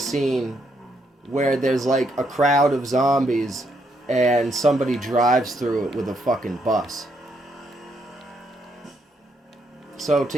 where there's like a crowd of zombies and somebody drives through it with a fucking bus? So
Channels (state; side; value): normal; both; correlation 0.75